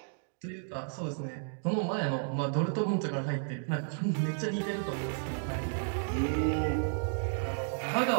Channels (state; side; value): silent; left; digital silence